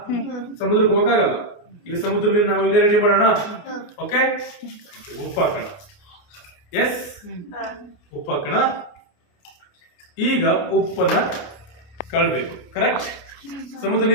ಸಮುದ್ರಕ್ಕೆ ಹೋಗಕ್ಕಾಗಲ್ಲ. ಈಗ ಸಮುದ್ರ ನೀರು ನಾವು ಇಲ್ಲೇ ರೆಡಿ ಮಾಡೋಣ. ಓಕೆ, ಉಪ್ಪು ಹಾಕೋಣ. ಎಸ್, ಉಪ್ಪು ಹಾಕೋಣ. ಈಗ ಉಪ್ಪನ್ನ ಕಳ್ಬೇಕು. ಕರೆಕ್ಟ್? ಸಮುದ್ರ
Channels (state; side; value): late; right; 29 ms